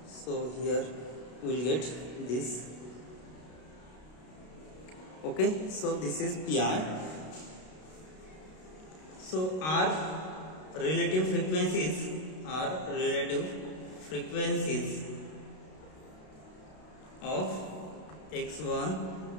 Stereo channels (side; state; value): right; late; 32 ms